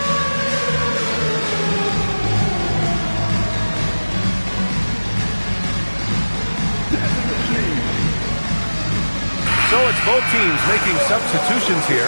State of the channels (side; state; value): both; inverted; correlation -1.00